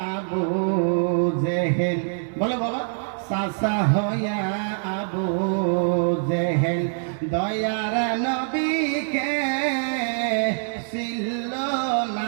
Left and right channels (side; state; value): left; silent; 60 dB below the other